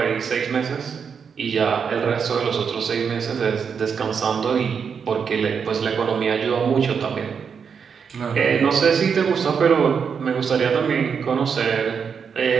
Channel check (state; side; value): quieter; left; 6.5 dB